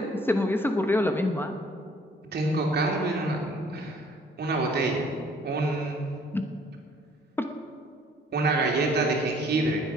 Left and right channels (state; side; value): normal; both; correlation 0.58